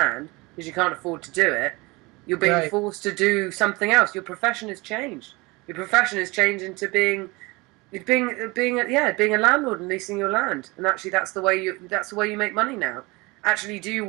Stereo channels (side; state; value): left; quieter; 24.4 dB